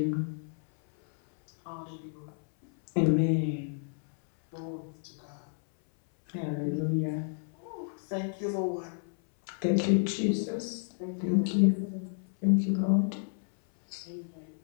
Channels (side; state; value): right; silent; 57 dB below the other